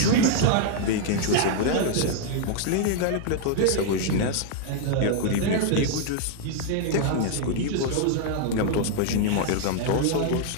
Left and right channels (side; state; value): both; different; correlation 0.00